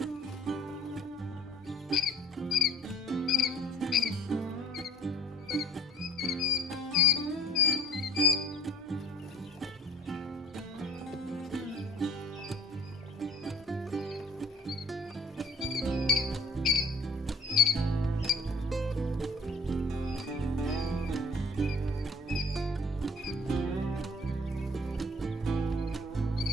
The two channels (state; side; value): normal; both; correlation 0.53